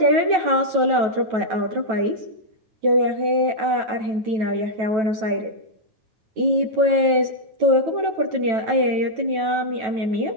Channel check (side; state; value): left; late; 9.1 ms